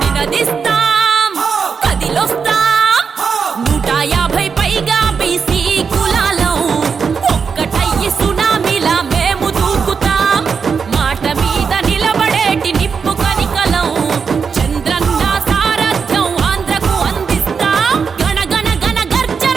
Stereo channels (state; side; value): quieter; left; 5.9 dB